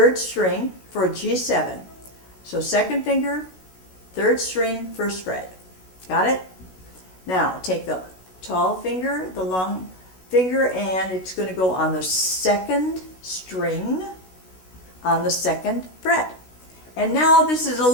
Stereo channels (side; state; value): right; late; 16 ms